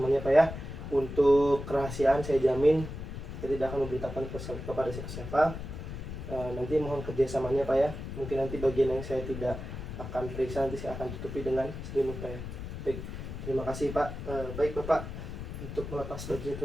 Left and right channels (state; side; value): noise; left; rumble, 8 dB below the sound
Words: Pak ya. Untuk kerahasiaan saya jamin saya tidak akan memberitakan kepada siapa-siapa. Nanti mohon kerjasamanya Pak ya. Mungkin nanti bagian yang saya tidak akan periksa nanti saya akan tutupi dengan selimut Pak ya. Baik, terima kasih Pak. Baik Bapak, untuk melepas bajunya